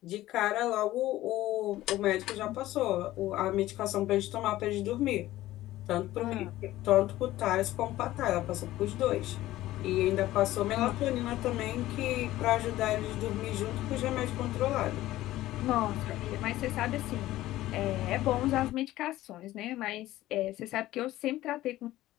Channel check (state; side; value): quieter; right; 15.6 dB